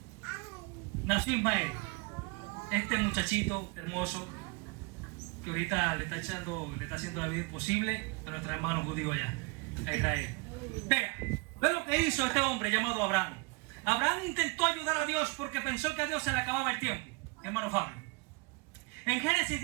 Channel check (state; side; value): quieter; left; 27.9 dB